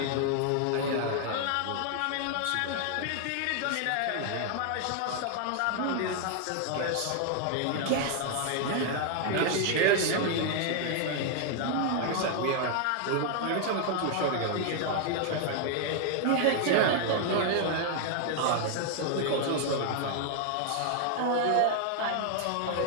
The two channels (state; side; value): different; both; correlation 0.00